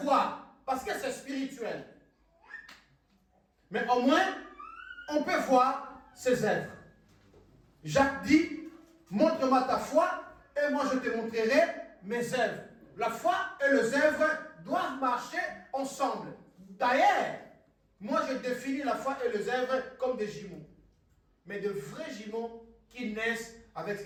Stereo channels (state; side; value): identical; both; correlation 1.00